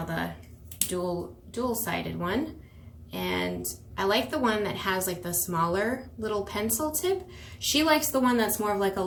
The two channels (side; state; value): both; identical; correlation 1.00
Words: the dual-sided one, and I like the one that has like the smaller little pencil tip. She likes the one that's more of like a